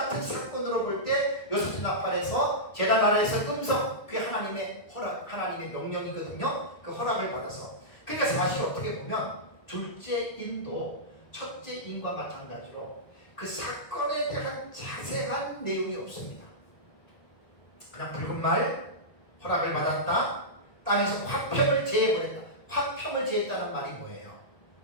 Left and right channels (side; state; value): right; late; 1.4 ms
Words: 사건으로 볼 때 여섯째 나팔에서 제단 아래에서 음성 그게 하나님의 허락 하나님의 명령이거든요. 그 허락을 받아서 그러니까 사실 어떻게 보면 둘째 인도 첫째 인과 마찬가지로 그 사건에 대한 자세한 내용이 없습니다. 그냥 붉은 말 허락을 받았다 땅에서 화평을 제해버렸다. 화평을 제했다는 말이 뭐예요?